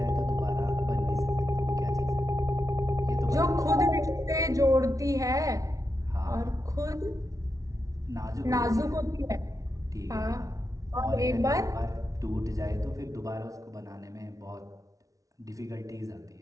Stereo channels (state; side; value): late; left; 0.17 ms